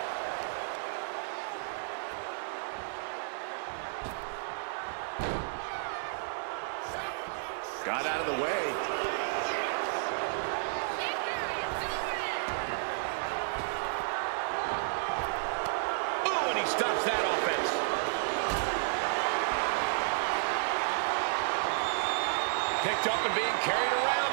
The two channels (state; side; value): silent; left; digital silence